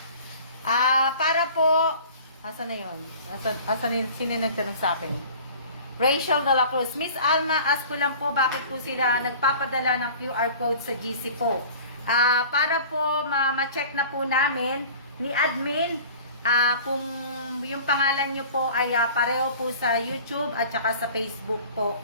Para po, asan na yun? Sino nagtanong sa akin? Rachel de la Cruz. Miss Alma, ask ko lang po, bakit po sila nagpapadala ng QR code sa GC po? Para po ma-check na po namin ni admin kung yung pangalan nyo po ay pareho po sa YouTube at saka sa Facebook po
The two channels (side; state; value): both; inverted; correlation -0.43